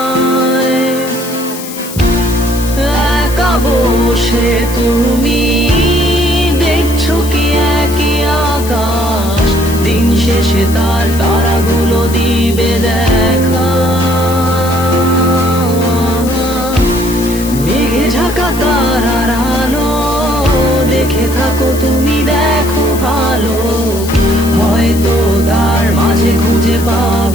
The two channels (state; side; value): noise; left; hiss, 12 dB below the sound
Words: একা বসে তুমি দেখছো কি একই আকাশ, দিন শেষে তার তারাগুলো দিবে দেখা। মেঘে ঢাকা তারার আলো দেখে থাকো তুমি, দেখো ভালো, হয়তো তার মাঝে খুঁজে